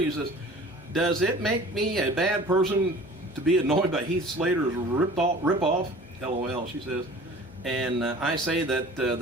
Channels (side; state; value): left; noise; hum, 23 dB below the sound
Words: says, does it make me a bad person to be annoyed by Heath Slater's rip-off? LOL, she says. And I say that the